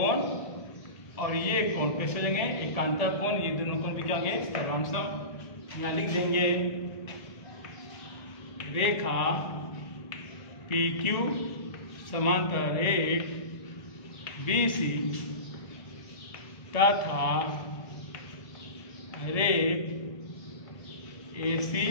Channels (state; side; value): late; right; 1.8 ms